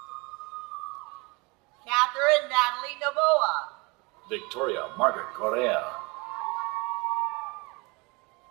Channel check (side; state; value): left; quieter; 26.9 dB